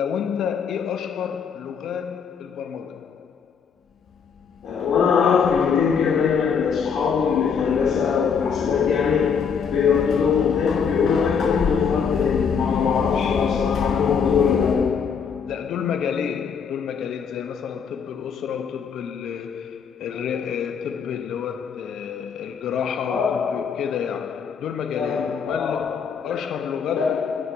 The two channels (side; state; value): right; quieter; 6.5 dB